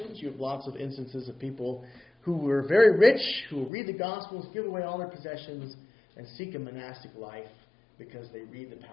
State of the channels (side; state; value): right; drops out; at 3.7 s